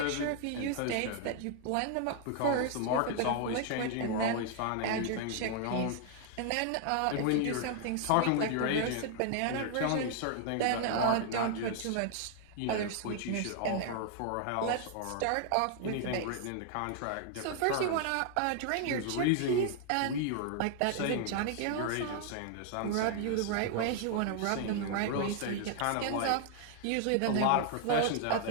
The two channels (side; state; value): both; different; correlation 0.00